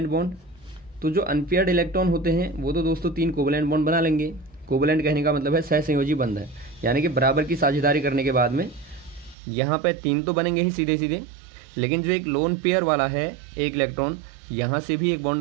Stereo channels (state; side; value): drops out; left; at 9.3 s